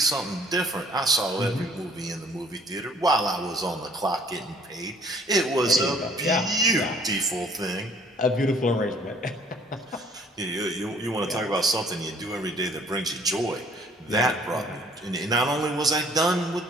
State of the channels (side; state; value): both; normal; correlation 0.57